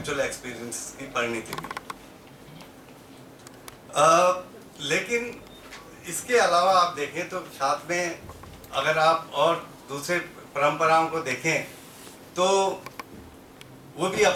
एक्सपीरियंस की परिणति हुई। लेकिन इसके अलावा आप देखें तो साथ में अगर आप और दूसरे परंपराओं को देखें तो वो भी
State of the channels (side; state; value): both; identical; correlation 1.00